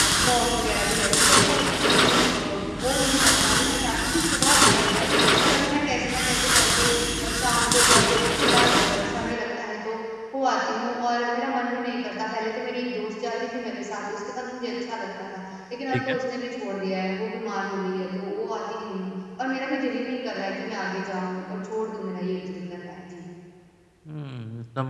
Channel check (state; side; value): identical; both; correlation 1.00